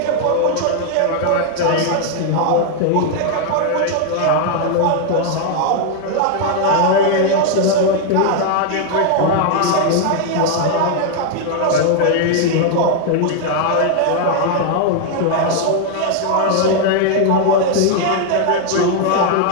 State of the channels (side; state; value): both; different; correlation 0.00